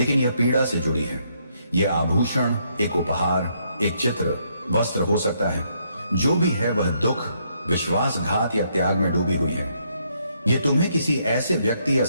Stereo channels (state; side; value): inverted; both; correlation -0.73